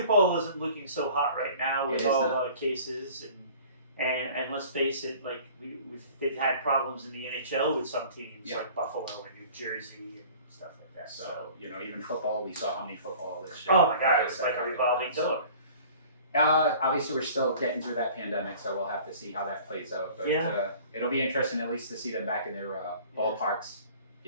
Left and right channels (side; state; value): both; inverted; correlation -0.47